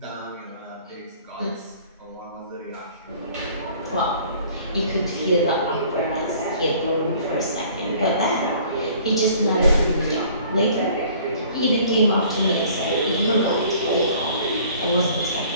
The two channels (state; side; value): inverted; both; correlation -0.53